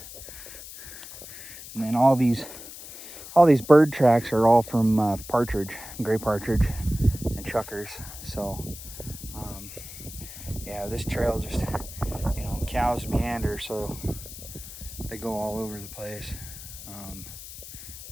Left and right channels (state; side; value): noise; left; hiss, 13 dB below the sound